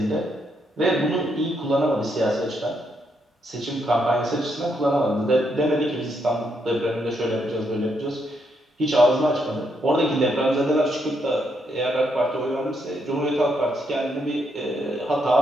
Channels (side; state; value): both; normal; correlation 0.77